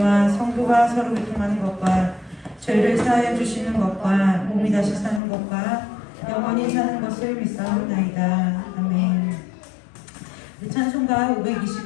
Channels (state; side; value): drops out; right; at 5.2 s